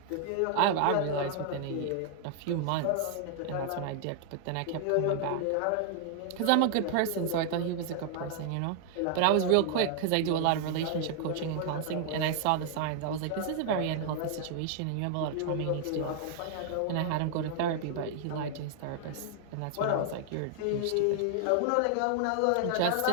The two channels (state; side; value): different; both; correlation 0.00